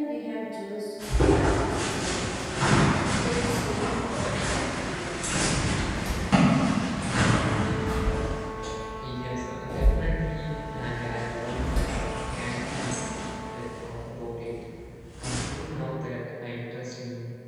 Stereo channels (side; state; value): both; identical; correlation 1.00